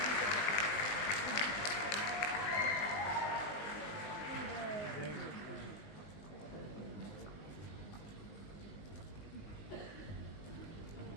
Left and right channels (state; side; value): late; right; 19 ms